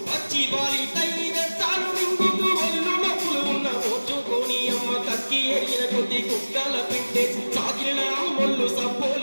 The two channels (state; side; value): inverted; both; correlation -1.00